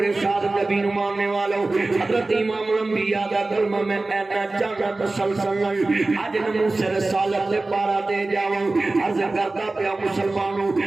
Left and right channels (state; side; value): quieter; left; 3.2 dB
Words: شاد نبی نو ماننے والوں حضرت امام الانبیاء دا کلمہ میں کہنا چاہنا تسلسل آج نموس رسالت لے پارا دے جاؤں عرض کرتا پیا مسلمانوں